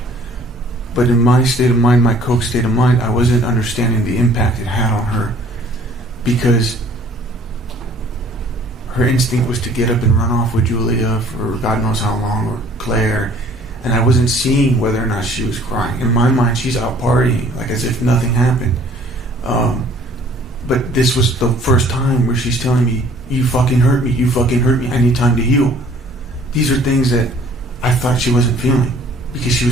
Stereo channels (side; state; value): both; normal; correlation 0.55